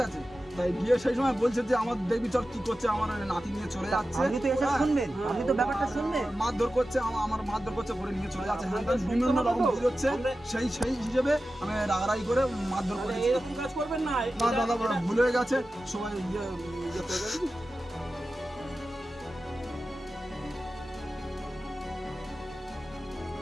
আছে, তাই গিয়ে সেই সময় বলছে যে আমার দেখবি চল কি করছে, আমার নাতি নিয়ে চলে যাচ্ছে। আপনি তো এসে শুনবেন, আপনি তো ব্যাপারটা শুনবেন। মারধর করছে, আমার মারধর করছে, করে নিয়ে চলে যাচ্ছে, হ্যাঁ বিভিন্ন রকম বুঝ হচ্ছে, সেই হিসেবে আমি রাগারাগি করে মারধর করেছি। এরকম কাজ করবেন না। না দাদা ভুল হয়ে গেছে, সবাই ইয়ে করে গেছে।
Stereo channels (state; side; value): normal; both; correlation 0.93